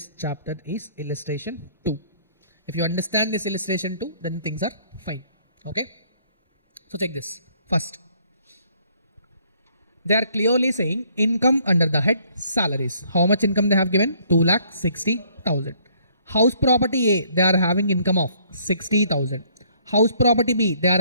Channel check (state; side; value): inverted; both; correlation -0.63